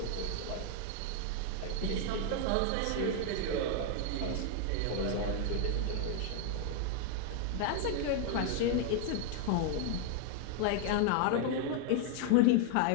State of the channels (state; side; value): different; both; correlation 0.00